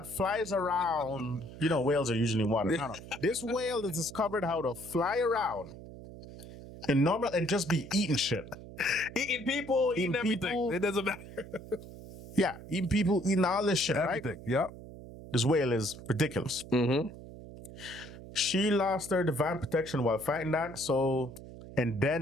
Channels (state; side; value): noise; right; hum, 15 dB below the sound